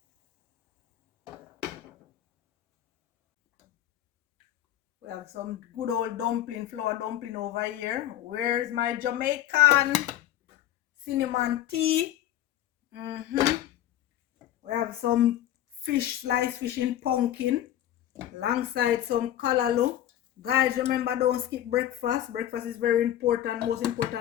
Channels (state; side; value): quieter; right; 12.2 dB